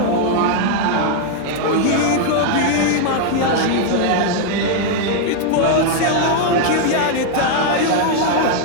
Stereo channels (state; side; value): different; both; correlation 0.00